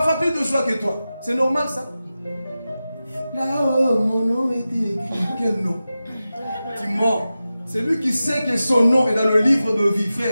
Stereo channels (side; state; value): both; inverted; correlation -0.94